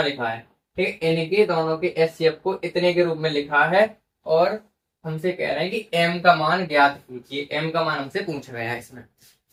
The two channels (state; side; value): identical; both; correlation 1.00